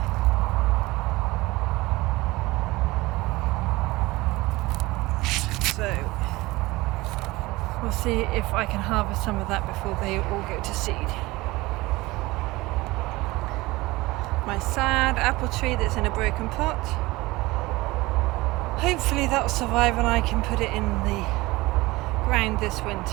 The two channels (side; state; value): left; quieter; 20.7 dB